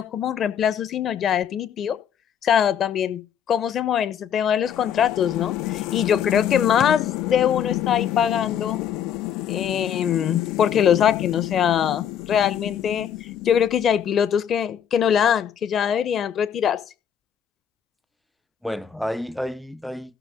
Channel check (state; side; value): quieter; right; 8.8 dB